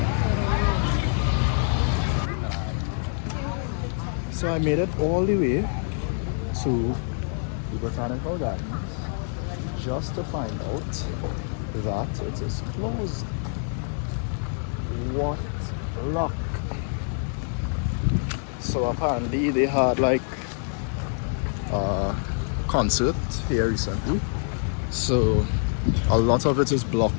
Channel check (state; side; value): silent; right; 61 dB below the other